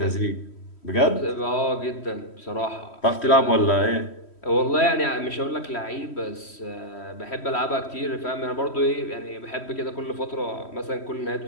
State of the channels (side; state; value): right; late; 3.1 ms